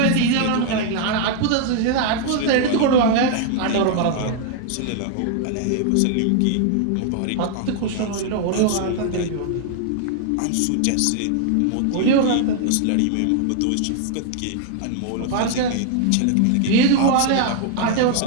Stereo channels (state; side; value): different; both; correlation 0.00